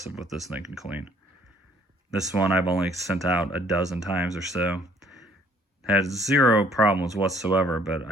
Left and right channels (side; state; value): both; normal; correlation 0.61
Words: what this thing can clean. This one I've only sent out a dozen times or so. Had zero problems whatsoever, but